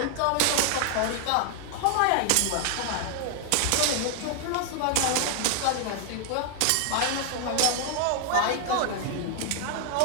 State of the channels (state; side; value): different; both; correlation 0.00